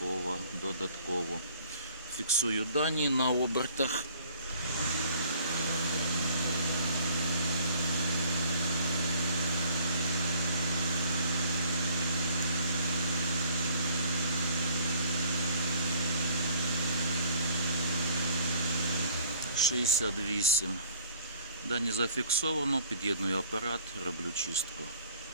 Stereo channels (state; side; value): inverted; both; correlation -0.57